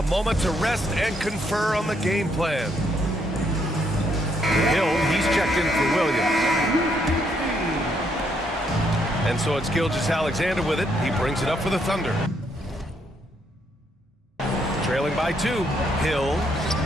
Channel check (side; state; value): both; normal; correlation 0.73